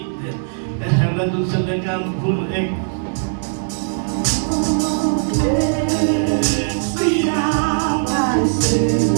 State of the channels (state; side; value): silent; left; 58 dB below the other